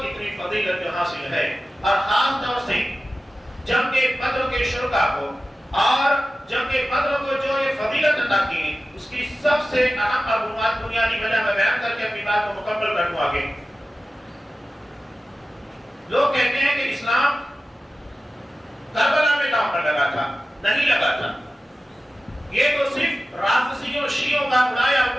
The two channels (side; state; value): both; normal; correlation 0.95